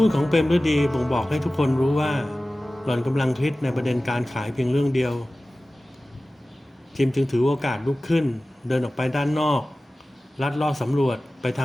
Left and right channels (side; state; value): both; normal; correlation 0.97